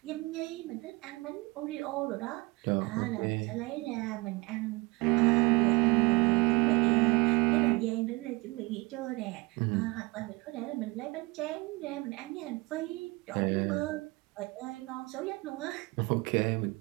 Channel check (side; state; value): left; quieter; 23.7 dB